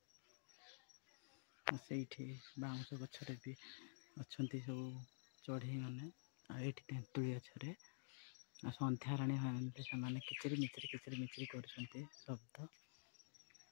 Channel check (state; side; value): silent; right; digital silence